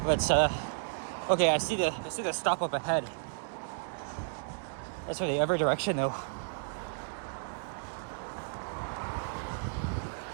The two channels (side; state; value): left; silent; digital silence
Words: Let's okay, I see the stop up ahead. That's for the other direction though.